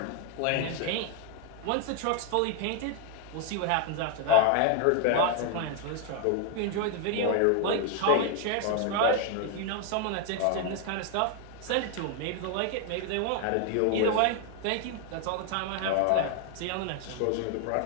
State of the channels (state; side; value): different; both; correlation 0.00